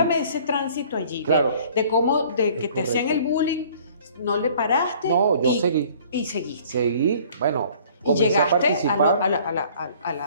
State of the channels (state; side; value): inverted; both; correlation -0.53